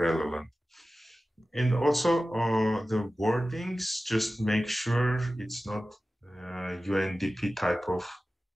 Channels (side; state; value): both; normal; correlation 0.95